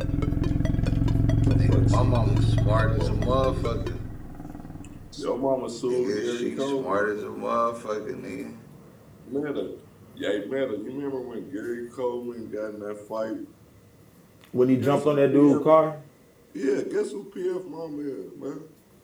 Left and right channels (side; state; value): both; identical; correlation 1.00